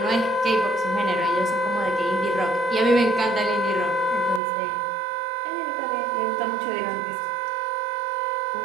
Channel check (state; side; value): drops out; left; at 4.4 s